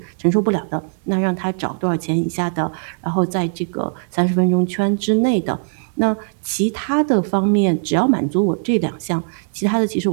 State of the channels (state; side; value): silent; left; digital silence